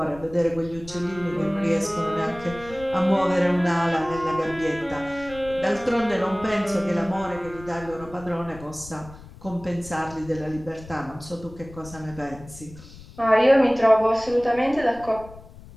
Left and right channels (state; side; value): noise; left; rumble, 18 dB below the sound